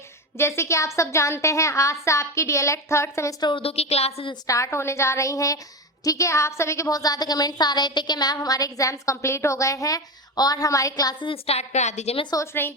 जैसे कि आप सब जानते हैं, आज से आपकी डीएलएड थर्ड सेमेस्टर उर्दू की क्लासेस स्टार्ट होने जा रही हैं। ठीक है, आप सभी के बहुत ज़्यादा कमेंट्स आ रहे थे कि मैम हमारे एग्जाम्स कंप्लीट हो गए हैं और हमारी क्लासेस स्टार्ट करा दीजिए। मैं सोच रही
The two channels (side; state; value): both; normal; correlation 0.19